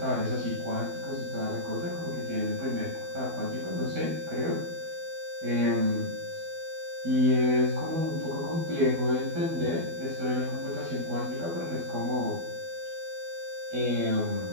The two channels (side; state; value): left; late; 12 ms